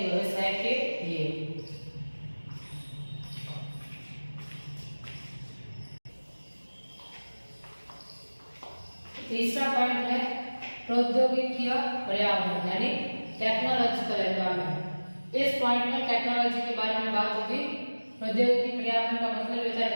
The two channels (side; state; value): both; inverted; correlation -1.00